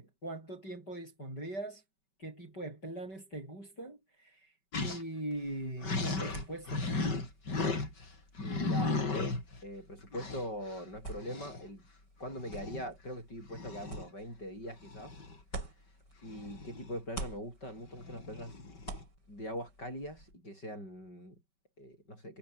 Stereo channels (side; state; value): right; late; 5.2 ms